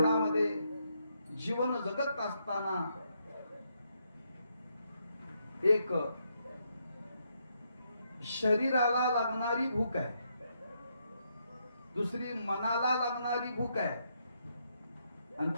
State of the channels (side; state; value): both; inverted; correlation -0.77